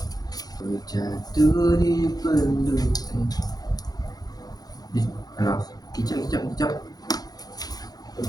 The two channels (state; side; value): late; right; 0.19 ms